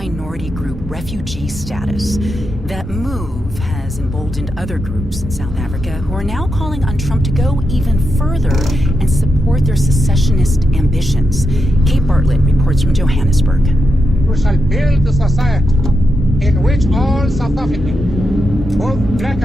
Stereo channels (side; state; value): both; normal; correlation 0.85